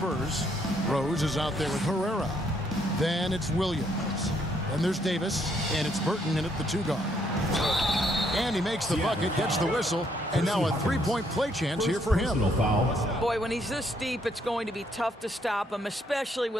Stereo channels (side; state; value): both; normal; correlation 0.70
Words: Rose is out there with Herrera. Then it's Williams. Then there's Davis, and it's Burton in at the 2-guard. And he makes the bucket, gets the whistle, and now a three-point play chance here for him. Boy, when he's this deep, it's going to be tough to stop him, especially